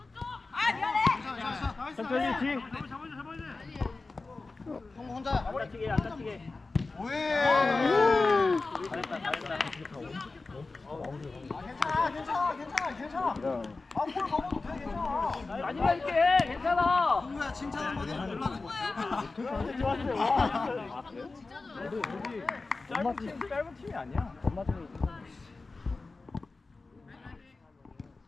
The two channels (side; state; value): right; quieter; 3.7 dB